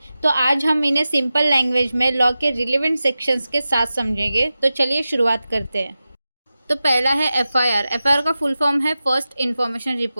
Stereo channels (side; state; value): both; inverted; correlation -0.94